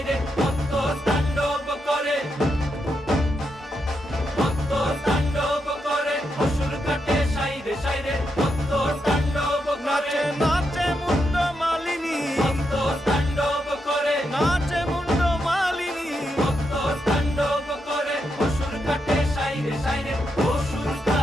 মত্ত তাণ্ডব করে, মত্ত তাণ্ডব করে অসুর কাটে সাইরে সাইরে, মত্ত তাণ্ডব করে। নাচে মুন্ড মালিনী, মত্ত তাণ্ডব করে, নাচে মুন্ড মালিনী, মত্ত তাণ্ডব করে অসুর কাটে সাইরে সাইরে, অসুর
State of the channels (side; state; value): both; normal; correlation 0.83